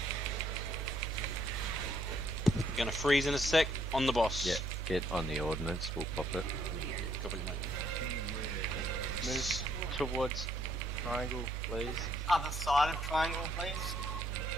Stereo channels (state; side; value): normal; both; correlation 0.68